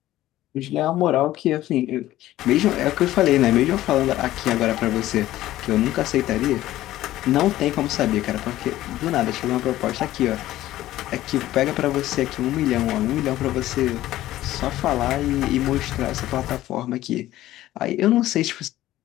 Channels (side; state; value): right; quieter; 14.9 dB